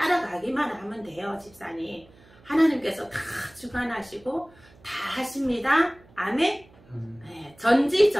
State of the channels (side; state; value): right; noise; hum, 27 dB below the sound